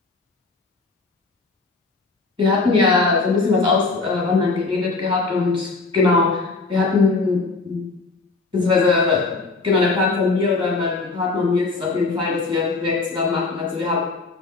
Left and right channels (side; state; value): right; quieter; 3.8 dB